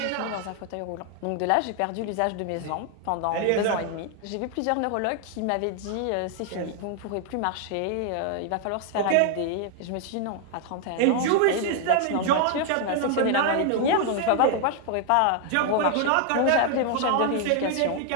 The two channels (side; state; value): both; different; correlation 0.00